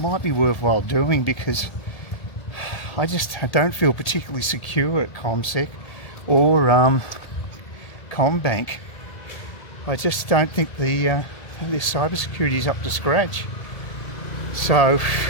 be worthwhile doing because I don't feel particularly secure at CommSec or CommBank. I just don't think their cybersecurity is up to scratch. So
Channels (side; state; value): right; late; 1.7 ms